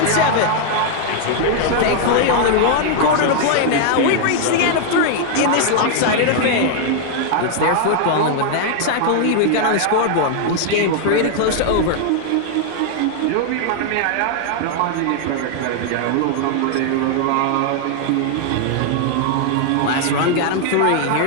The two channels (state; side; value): different; both; correlation 0.00